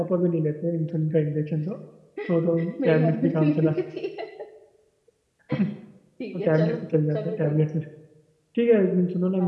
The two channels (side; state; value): both; identical; correlation 1.00